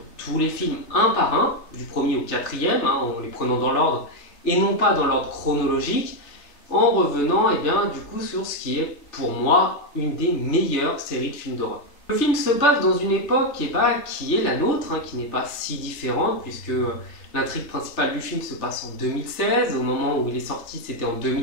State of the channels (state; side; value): late; right; 3.3 ms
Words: tous les films un par un, du premier au quatrième, en les prenant dans l'ordre et non pas dans l'ordre chronologique, en revenant du coup sur ce qui est pour moi une des meilleures séries de films d'horreur. Le film se passe dans une époque qui est la nôtre, qui n'est pas si différente puisque l'intrigue principale du film se passe en 2016, au moment où il est sorti c'était en